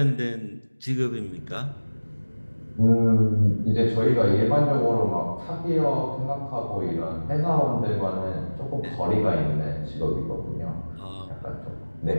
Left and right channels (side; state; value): both; inverted; correlation -1.00